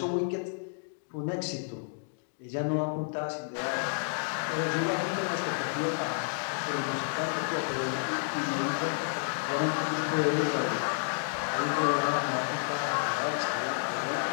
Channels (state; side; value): silent; right; digital silence